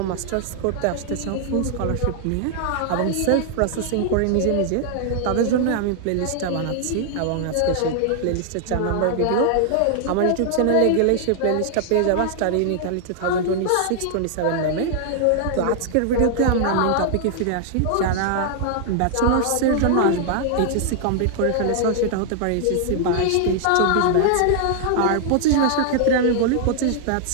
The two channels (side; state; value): both; different; correlation 0.00